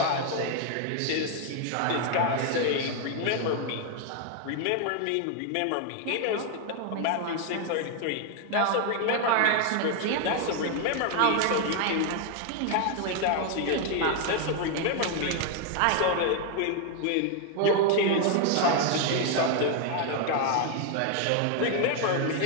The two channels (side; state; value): both; different; correlation 0.00